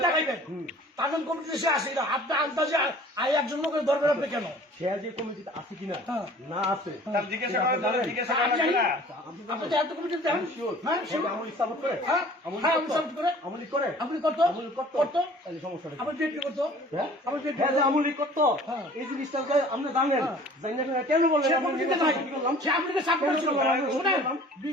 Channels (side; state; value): both; normal; correlation 0.48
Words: দেখাইবেন তার জন্য কমিটিতে সে আসে কিনা, আপনি আন্দাজে একজন লোকের দরকার আপনি কেন সে যে কমিটিতে আছে কিনা না আছে আপনি এত কমিটিতে দেখেন আমলি সাপোর্ট করে আমলি করে আপনি করতো তাহলে সমস্যা আপনি ডেট করতো আমলি করতো এই জিনিসটা আপনি জানেন কেন বললেন